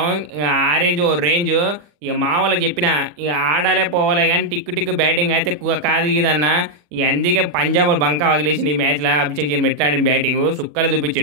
ఇక ఆ రేంజ్ ఓ రేంజ్. ఇక మా వాళ్ళకి చెప్పిన ఇక ఆడాలే పోవాలే కానీ టిక్కు టిక్కు బ్యాటింగ్ అయితే కాదు ఇదన్న. ఇక అందుకే పంజాబ్ బంకా వదిలేసింది ఈ మ్యాచ్లో. అభిషేక్ శర్మ ఎట్లా ఆడిన బ్యాటింగ్ సుక్కలు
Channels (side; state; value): left; late; 40 ms